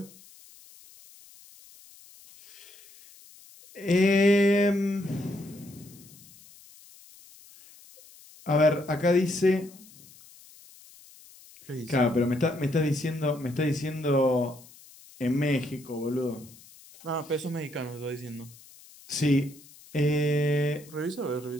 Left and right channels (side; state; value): left; noise; hiss, 23 dB below the sound